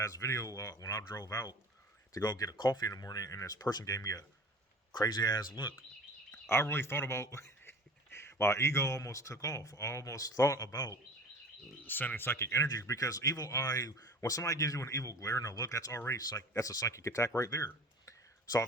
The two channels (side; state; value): both; normal; correlation 0.41